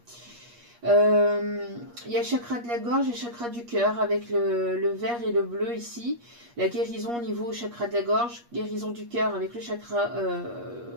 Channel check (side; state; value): left; late; 8.4 ms